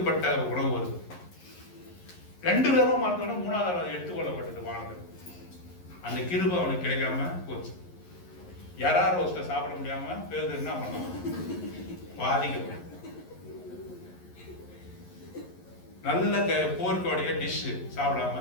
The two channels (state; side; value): late; right; 11 ms